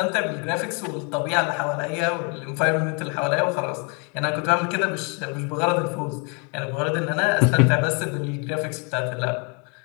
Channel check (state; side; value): quieter; right; 34.8 dB